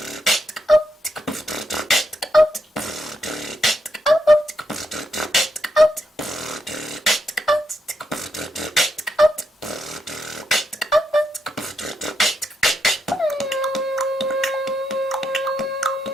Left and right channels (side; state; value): both; normal; correlation 0.80